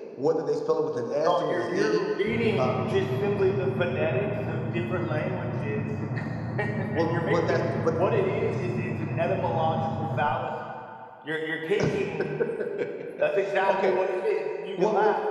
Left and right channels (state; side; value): identical; both; correlation 1.00